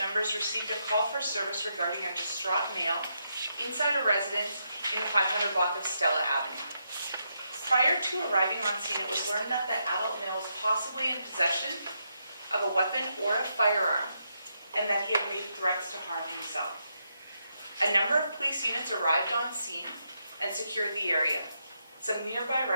received a call for service regarding a distraught male inside a residence in the 500 block of Stella Avenue. Prior to arriving on scene, it was learned that the adult male was possibly in possession of a weapon or a firearm, and that he had made threats to harm himself. A number of police units arrived on scene and secured the area. Some nearby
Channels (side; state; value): both; inverted; correlation -0.81